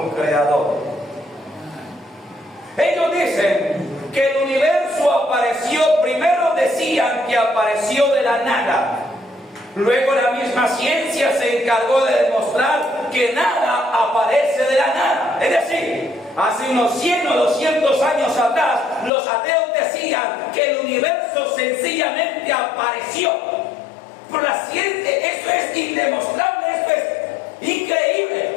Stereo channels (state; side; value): drops out; right; at 19.1 s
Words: creador. Ellos dicen que el universo apareció, primero decían que apareció de la nada. Luego la misma ciencia se encargó de demostrar que nada aparece de la nada. Es decir, hace unos 100 o 200 años atrás, los ateos decían que el universo sencillamente apareció. Pero la ciencia, eso es indemostrable, eso es increíble.